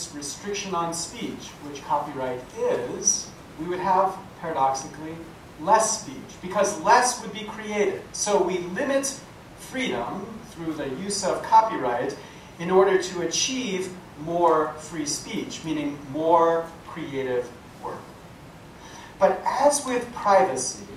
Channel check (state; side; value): identical; both; correlation 1.00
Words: restriction on speech, which copyright is, we would have, paradoxically, less speech, because less would be created. So we limit freedom through the use of copyright in order to achieve more free speech, meaning more creative work. But as with privacy,